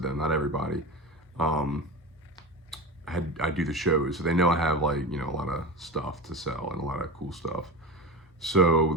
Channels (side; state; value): both; normal; correlation 0.26